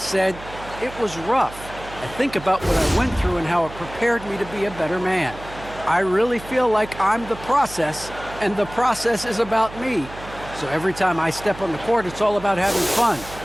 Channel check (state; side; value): noise; right; hum, 15 dB below the sound